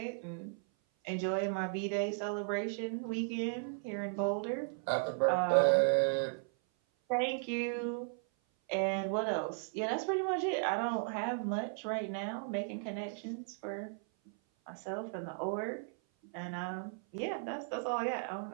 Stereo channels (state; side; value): silent; left; 54 dB below the other